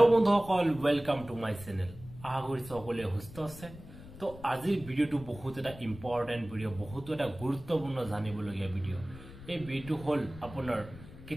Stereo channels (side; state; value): left; noise; rumble, 16 dB below the sound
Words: বন্ধুসকল, ওয়েলকাম টু মাই চ্যানেল। আশা কৰিছো সকলোৱে সুস্থ আছে। তো আজিৰ ভিডিওটো বহুত এটা ইম্পৰ্টেন্ট ভিডিও, বহুত এটা গুৰুত্বপূৰ্ণ জানিবলগীয়া ভিডিও। এই ভিডিওটো হল আপোনাৰ